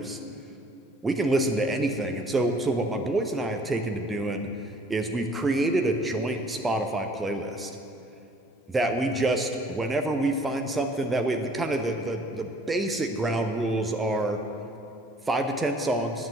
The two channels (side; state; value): both; normal; correlation 0.56